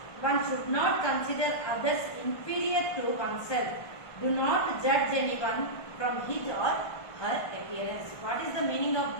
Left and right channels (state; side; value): late; right; 1.5 ms